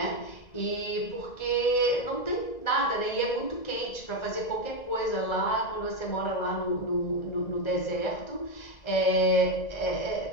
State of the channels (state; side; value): late; right; 1.9 ms